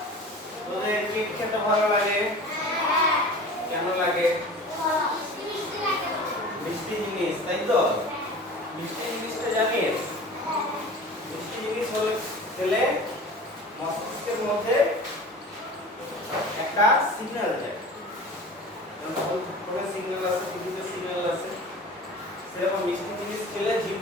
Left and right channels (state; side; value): normal; both; correlation 0.38